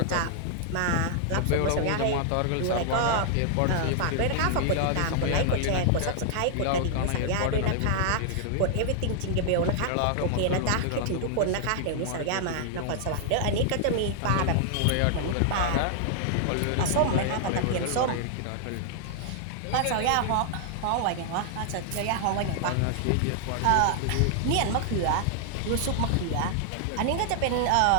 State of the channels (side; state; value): both; different; correlation 0.00